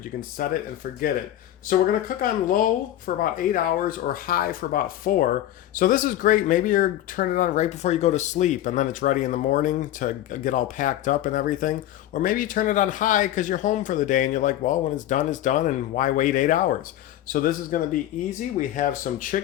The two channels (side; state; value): right; quieter; 13.0 dB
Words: You can set it and forget it. So we're going to cook on low for about 8 hours or high for about 4. So this is great. Maybe you're turning it on right before you go to sleep and then it's ready in the morning to get all packed up and everything. Or maybe you turn it on high because you're home for the day and you're like, well, when it's done and why wait 8 hours? So this is going to be easy. We have some